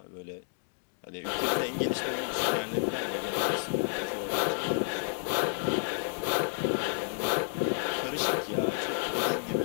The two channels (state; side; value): silent; right; digital silence